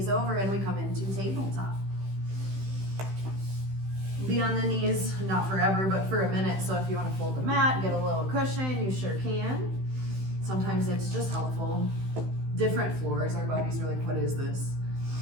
over, and we come into tabletop. Be on the knees, not forever, but for a minute. So if you want to fold the mat, get a little cushion, you sure can. Sometimes it's just helpful. Different floors, our bodies are like, what is this?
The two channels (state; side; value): late; left; 16 ms